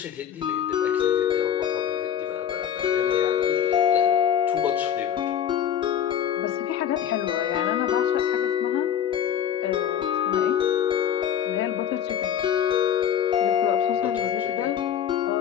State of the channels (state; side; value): quieter; right; 9.4 dB